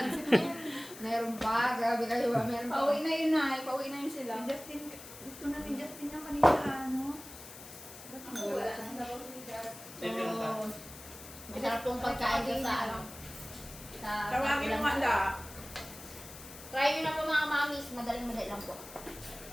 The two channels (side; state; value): left; noise; hiss, 15 dB below the sound